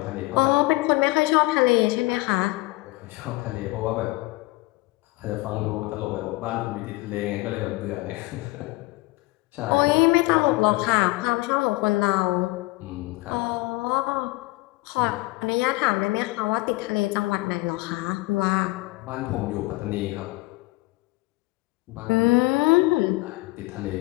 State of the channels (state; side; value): quieter; right; 22.2 dB